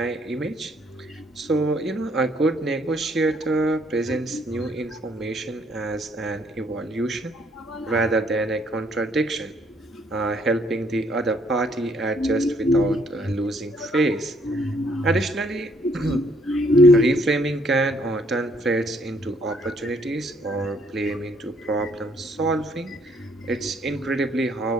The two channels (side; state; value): both; normal; correlation 0.66